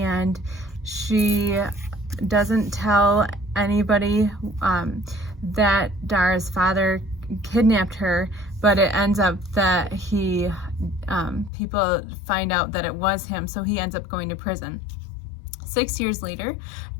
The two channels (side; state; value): right; drops out; at 11.5 s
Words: she doesn't tell anybody that Dara's father kidnapped her, but it ends up that people find out that it was him, so he ends up going to prison. 6 years later,